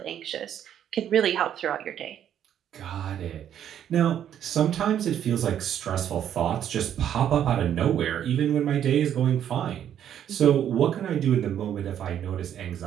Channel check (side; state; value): left; quieter; 9.9 dB